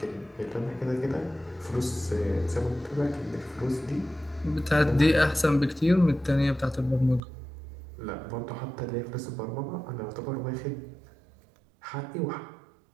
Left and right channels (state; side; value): drops out; left; at 7.2 s